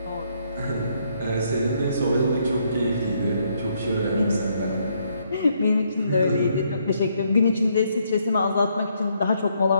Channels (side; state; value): both; inverted; correlation -0.73